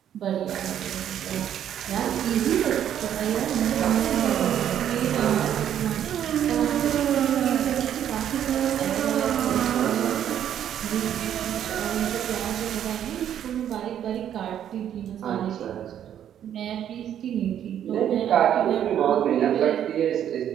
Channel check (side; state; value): left; quieter; 10.1 dB